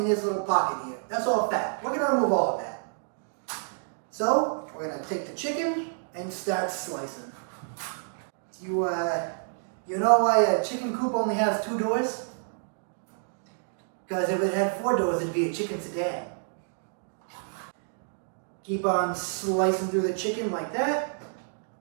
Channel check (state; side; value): silent; left; digital silence